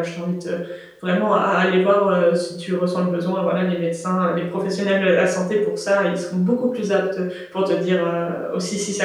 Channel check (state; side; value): identical; both; correlation 1.00